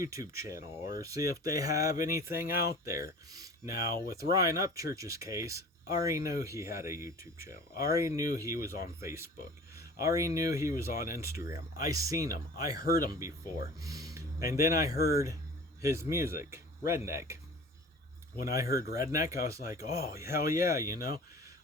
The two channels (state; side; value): normal; both; correlation 0.41